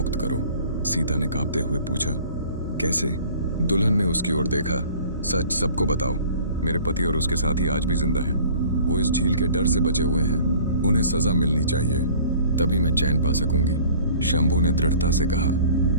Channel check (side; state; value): both; inverted; correlation -0.48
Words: करो। सीता ने कांपते हुए पूछा, कैसे? दुल्हन ने उसकी ओर देखा। सच सबको बताओ, मेरे पति और उसके साथी आज भी जिंदा हैं। वो इस झील के डर से बचे हुए हैं, उन्हें सजा मिलनी चाहिए, तभी मैं चैन पा सकूंगी। शंभू ने दृढ़ता से कहा,